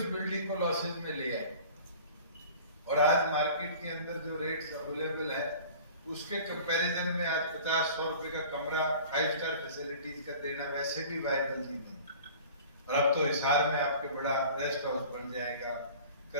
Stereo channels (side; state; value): both; inverted; correlation -0.43